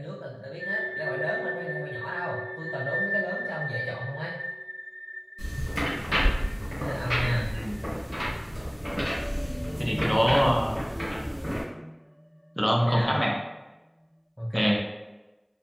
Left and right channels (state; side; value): identical; both; correlation 1.00